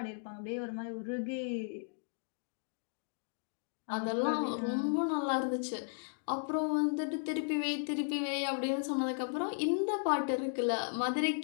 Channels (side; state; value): right; silent; digital silence